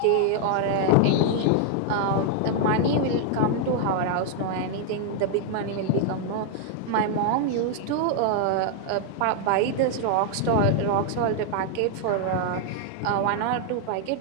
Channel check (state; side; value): different; both; correlation 0.00